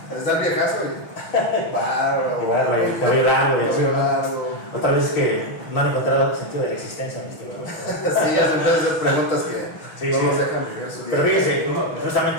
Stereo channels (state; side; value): late; right; 6.2 ms